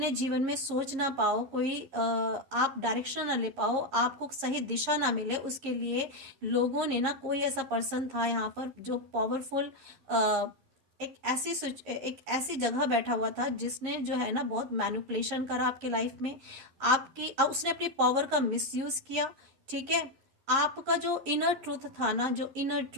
जीवन में सोच ना पाओ, कोई आप डायरेक्शन ना ले पाओ, आपको सही दिशा ना मिले, उसके लिए लोगों ने ना, कोई ऐसा पर्सन था यहाँ पर जो पावरफुल एक ऐसी जगह बैठा हुआ था जिसने जो है ना बहुत मैनिपुलेशन करा आपके लाइफ में। उसने अपनी पावर का मिसयूज किया। ठीक है, आपका जो इनर ट्रूथ था ना, जो इनर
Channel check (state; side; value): late; left; 11 ms